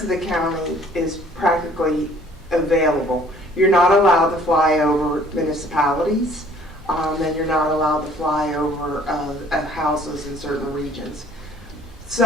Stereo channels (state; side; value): normal; both; correlation 0.56